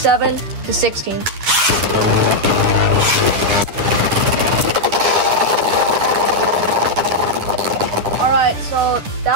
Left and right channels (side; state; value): left; late; 10 ms